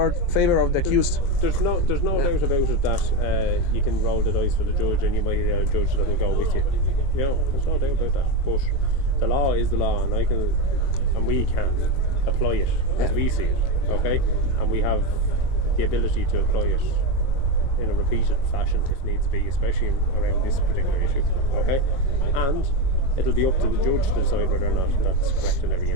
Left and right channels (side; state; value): right; late; 22 ms